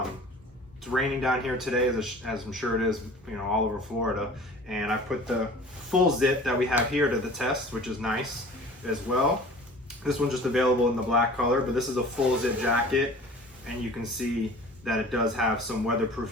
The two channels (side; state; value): both; normal; correlation 0.44